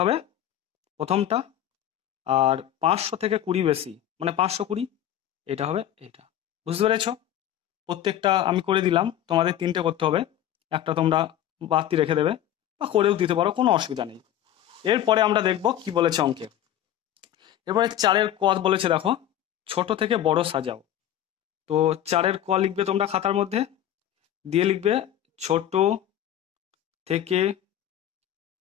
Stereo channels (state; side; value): quieter; right; 11.5 dB